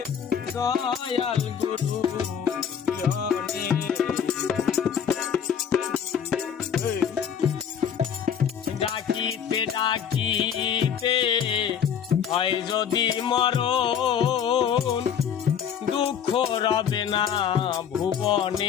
দয়াল গুরু বিহনে ডাকিতে ডাকিতে হয় যদি মরণ দুঃখ রবে না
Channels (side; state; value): right; quieter; 8.1 dB